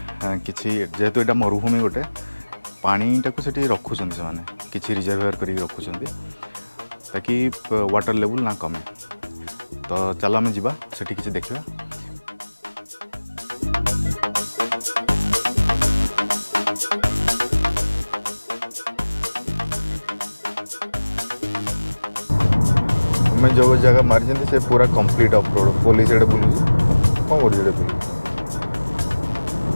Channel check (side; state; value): both; inverted; correlation -1.00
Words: किसी जेहेतु यहाँ मरुभूमि गोटे पानीटा को सेठी रखुच्च से किसी रिजर्वायर कर रखुच्च ताकि वाटर लेवल ना कमे। तो चल आम जा सेठी किसी देखा। मैं जो जगह मारी से पूरा कंप्लीट ऑफ रोड पुलिस एडे बुलूँ कौन कर बुलूँ